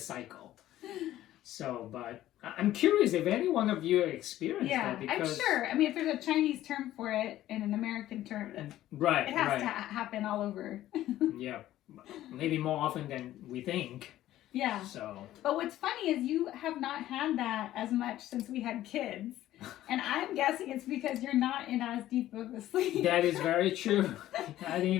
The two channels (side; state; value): right; quieter; 13.9 dB